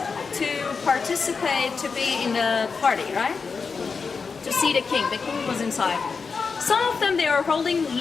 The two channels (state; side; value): quieter; right; 5.1 dB